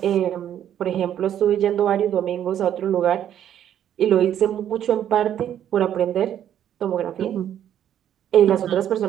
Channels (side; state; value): left; quieter; 10.3 dB